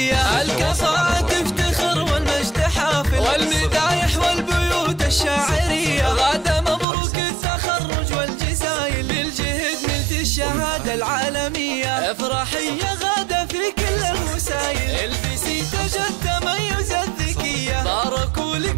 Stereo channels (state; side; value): drops out; left; at 6.9 s